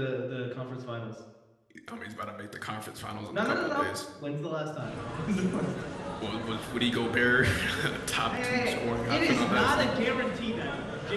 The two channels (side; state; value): both; identical; correlation 1.00